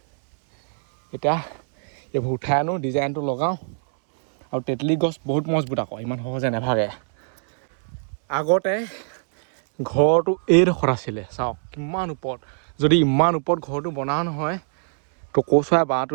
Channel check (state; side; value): silent; left; 62 dB below the other